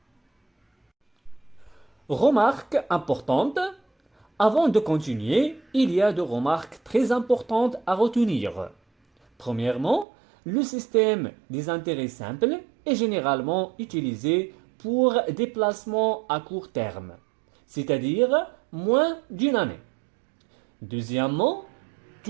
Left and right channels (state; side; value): drops out; left; at 10.1 s